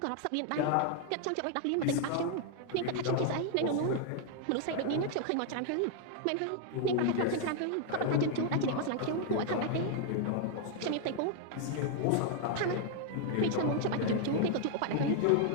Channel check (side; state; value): both; different; correlation 0.00